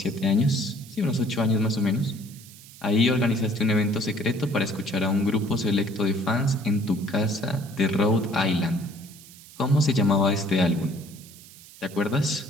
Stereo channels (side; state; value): right; noise; hiss, 20 dB below the sound